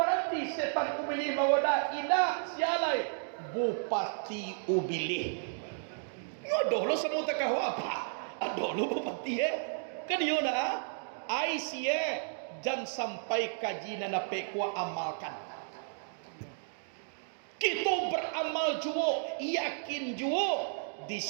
setan ubilih mawada ina sialai bupati ubilih nyodoh lo semua takahu apa adoh lo bupati kan yo na ai sie jan sampai kaji na pekwa amalkan kita beramal juo yakin juo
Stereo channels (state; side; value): silent; left; digital silence